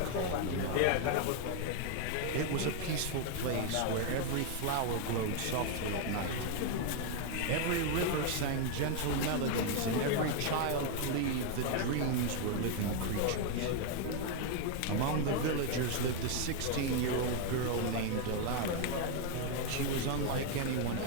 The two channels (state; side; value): different; both; correlation 0.01